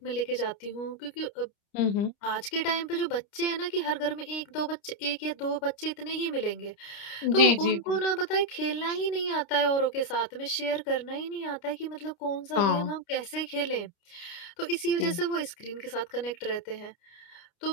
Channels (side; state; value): right; late; 29 ms